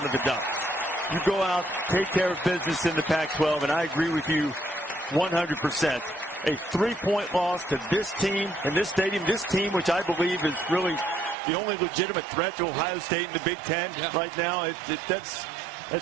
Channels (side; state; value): left; drops out; at 11.4 s